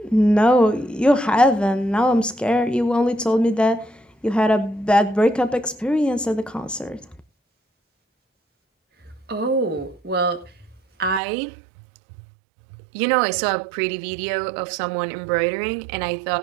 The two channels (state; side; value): drops out; left; at 11.2 s